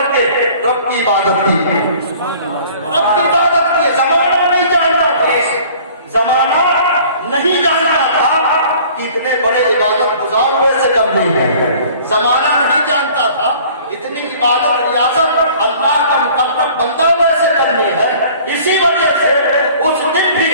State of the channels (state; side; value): inverted; both; correlation -0.50